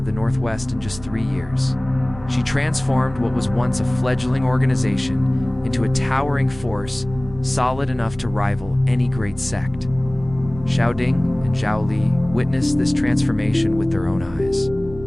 the Northwest in just 3 years. She transformed what was once a fledgling organization into a towering force, solid enough to rival any great sect. Xiao Ding and Xiao Li witnessed this transformation with their own eyes.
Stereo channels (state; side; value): noise; right; rumble, 16 dB below the sound